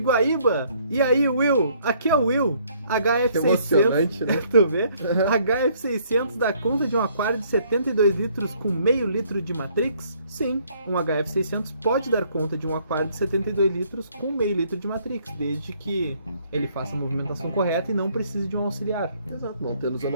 E aí, Will? Aqui é o Will. HF600. Que emocionante, né? Tu vê? HF600 dá conta de um aquário de 72 litros com meio litro de Matrix? Sim, um HF600 pode dar conta de um aquário de 72 litros com meio litro de Matrix, desde que ele faça a movimentação correta e não precise de um auxiliar. Exato, não tendo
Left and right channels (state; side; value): inverted; both; correlation -0.64